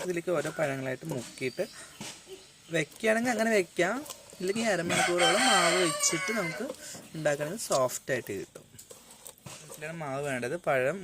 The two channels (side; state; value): both; identical; correlation 1.00